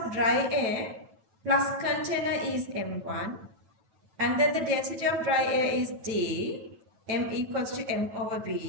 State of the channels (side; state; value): left; late; 9.0 ms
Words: dry air plus container is M1. And then the density of dry air is D, M equals to M over